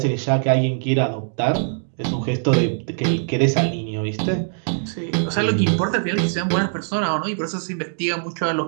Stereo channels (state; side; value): silent; left; digital silence